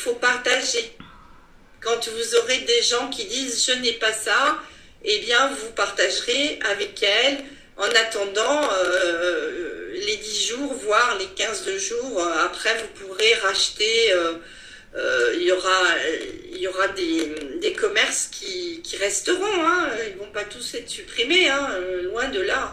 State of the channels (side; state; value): both; identical; correlation 1.00